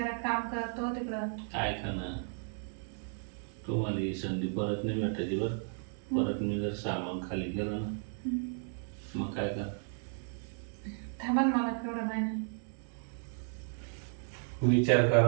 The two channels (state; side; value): silent; left; 55 dB below the other